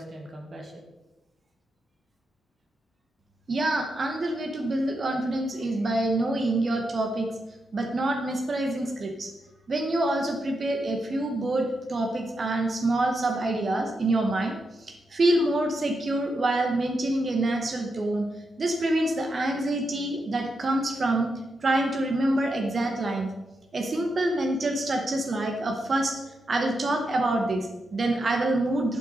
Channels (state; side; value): normal; both; correlation 0.85